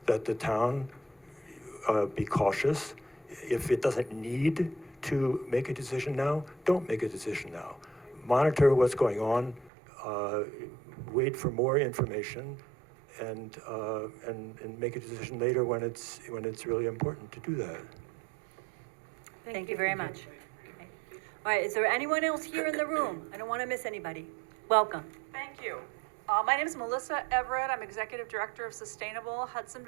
that the town be cautious. If it doesn't need to make a decision now, don't make a decision now. Monitor what's going on, wait for more information, and make a decision later when it's really important to do that. Thank you very much. Okay. All right, is there anyone else here in the room? I don't want to miss anybody. Welcome. Thank you. My name is Melissa Everett. I'm Executive Director of Sustainable Hudson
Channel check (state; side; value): drops out; left; at 9.7 s